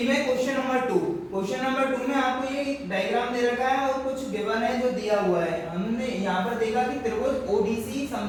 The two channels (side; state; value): both; identical; correlation 1.00